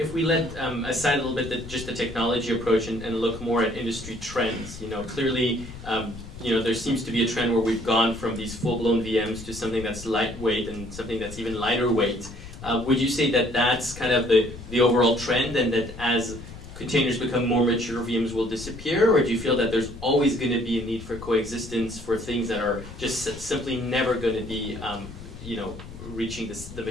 let aside a little bit just the technology approach and look more at industry trends, clearly, there seems to be a trend where we've gone from these full-blown VMs to something that's lightweight and something that's even lighter weight. Would you say that that's kind of the overall trend, and that as containers become more mature, VMs will disappear, or do you feel that there's always going to be a need for coexistence for things that are just simply never going to be, reaching the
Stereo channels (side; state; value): left; noise; rumble, 13 dB below the sound